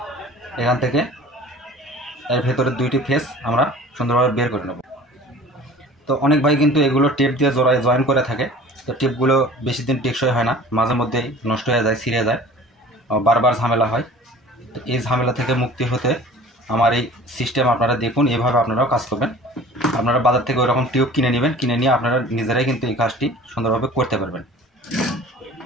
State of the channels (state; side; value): normal; both; correlation 0.44